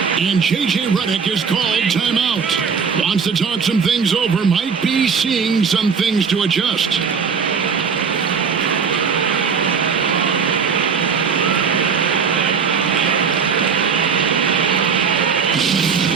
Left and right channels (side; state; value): left; quieter; 6.0 dB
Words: And J.J. Redick is called timeout. Wants to talk some things over. Might be seeing some things to adjust.